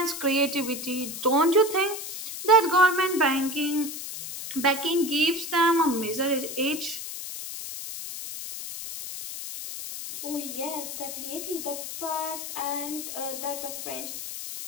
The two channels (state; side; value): noise; left; hiss, 8 dB below the sound